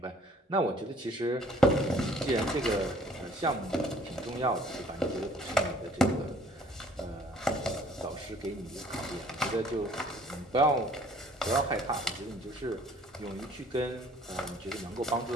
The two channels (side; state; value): both; normal; correlation 0.56